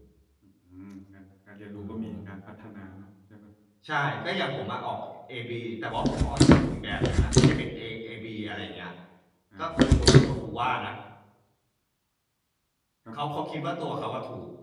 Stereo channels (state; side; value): identical; both; correlation 1.00